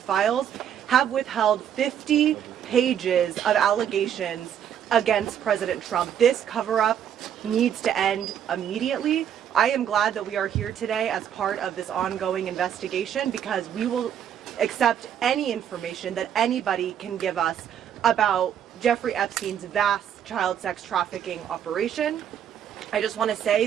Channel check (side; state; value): left; quieter; 9.3 dB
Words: have withheld 50 pages of allegations against President Trump. This cover-up needs to end immediately. I am glad that we are here today as part of this ongoing investigation, because we will accept any information that anybody can give us about Jeffrey Epstein's vast child sex trafficking operation. I just want to